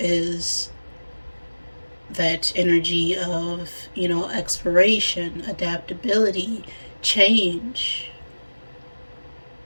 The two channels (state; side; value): inverted; both; correlation -1.00